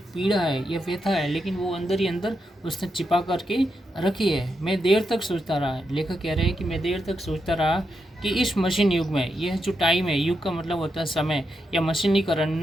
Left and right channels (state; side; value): normal; both; correlation 0.85